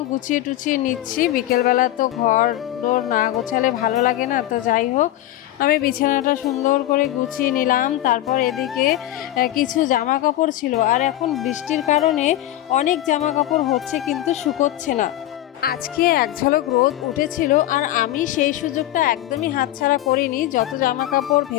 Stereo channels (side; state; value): right; quieter; 14.1 dB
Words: গুছিয়ে টুছিয়ে নিচ্ছি। বিকেলবেলা তো ঘর দোর না গোছালে ভালো লাগে না। তো যাই হোক, আমি বিছানাটা সুন্দর করে গুছিয়ে নিলাম। তারপর এদিকে কিছু জামা কাপড় ছিল, আর এখন বৃষ্টির কারণে অনেক জামা কাপড় হচ্ছে কিন্তু শুকোচ্ছে না। আজকে এক ঝলক রোদ উঠেছিল, আর আমি সেই সুযোগটা একদমই হাতছাড়া করিনি। যত জামা কাপড়